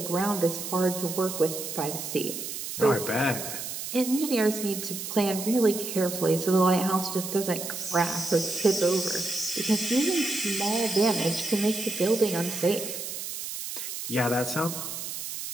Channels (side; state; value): right; noise; hiss, 6 dB below the sound